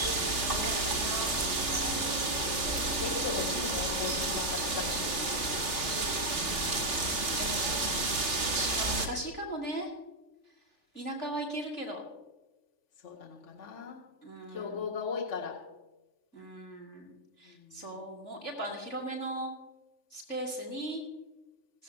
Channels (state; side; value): late; right; 3.4 ms